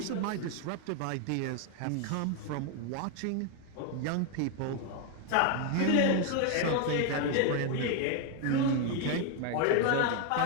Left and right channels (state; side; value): different; both; correlation 0.01